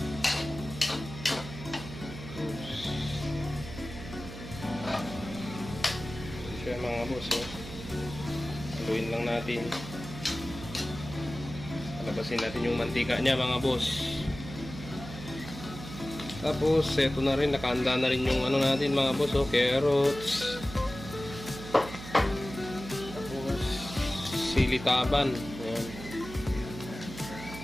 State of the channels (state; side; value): noise; right; hum, 12 dB below the sound